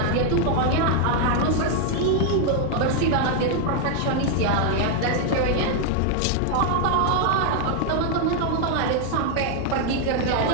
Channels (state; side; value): different; both; correlation 0.00